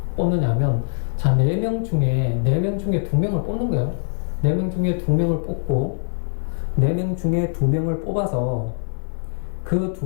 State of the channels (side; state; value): right; silent; digital silence